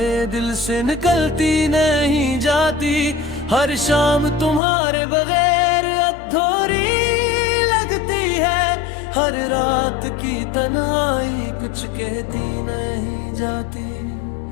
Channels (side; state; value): right; drops out; at 4.6 s